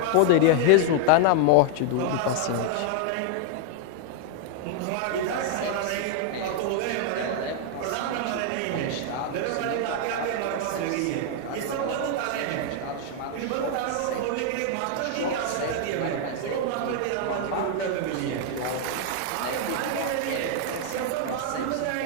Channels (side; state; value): both; different; correlation 0.00